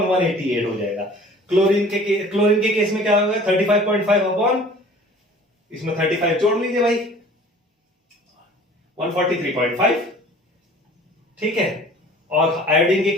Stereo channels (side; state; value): both; normal; correlation 0.47